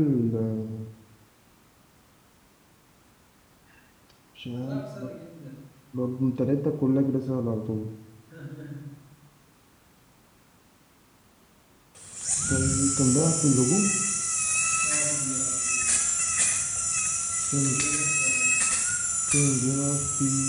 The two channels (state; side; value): identical; both; correlation 1.00